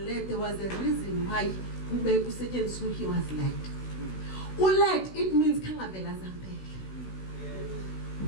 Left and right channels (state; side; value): late; right; 16 ms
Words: there was a reason why ube kusetshenziswa he was led. Led, it means khangavela zampela.